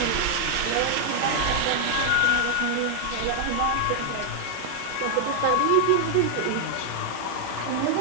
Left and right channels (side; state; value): both; different; correlation 0.00